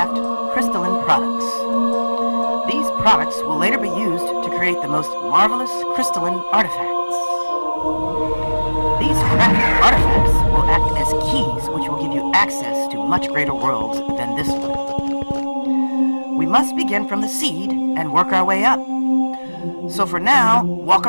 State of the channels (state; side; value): inverted; both; correlation -1.00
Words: crystalline products. These products will later be used to create the most marvelous crystalline artifacts. These crafted artifacts will act as keys which will give you access to much greater worlds than this one. We must begin from the seed and work our way up. So for now, walk